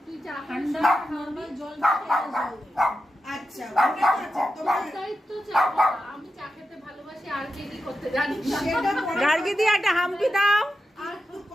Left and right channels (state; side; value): normal; both; correlation 0.89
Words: ঠান্ডা নরমাল জল আচ্ছা আমি চা খেতে ভালোবাসি আর কি করতে জানি গার্গি দিয়ে একটা হামকি দাও। আর